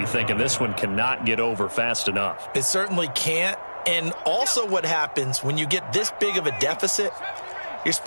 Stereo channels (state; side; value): inverted; both; correlation -1.00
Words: thinking this one cannot get over fast enough. It certainly can't. And also what happens when you get this big of a deficit, you're